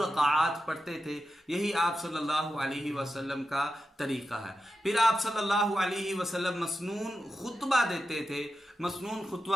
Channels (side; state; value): both; normal; correlation 0.90